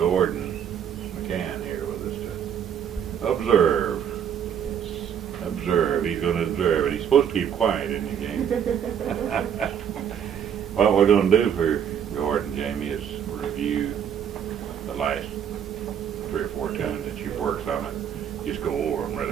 McCann here with us to observe. Observe. He's going to observe. And he's supposed to keep quiet in the game. What we're going to do for Gordon, Jamie, is review the last 3 or 4 tunes that you've worked on it. Just go over them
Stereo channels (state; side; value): quieter; left; 8.6 dB